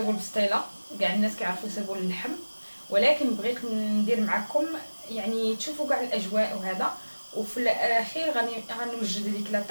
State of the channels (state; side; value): inverted; both; correlation -1.00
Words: البسطيله، كاع الناس كيعرفوا يسيبوا اللحم، ولكن بغيت ندير معكم يعني تشوفوا كاع الاجواء وهذا، وفي الاخير غنوجد لك لا